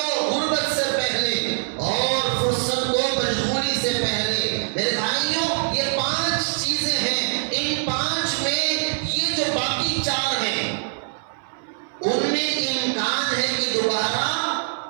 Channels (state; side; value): silent; left; 60 dB below the other